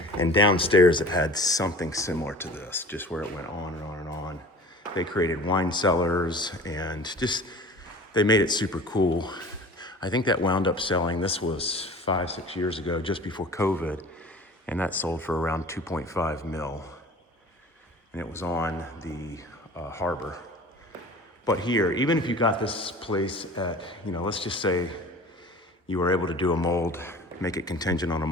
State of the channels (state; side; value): normal; both; correlation 0.41